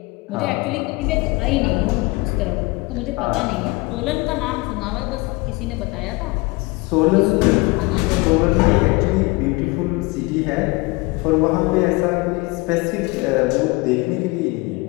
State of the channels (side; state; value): right; quieter; 25.0 dB